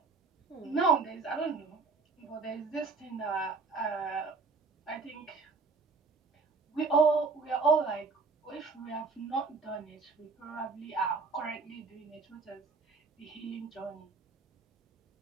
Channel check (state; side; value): quieter; left; 4.3 dB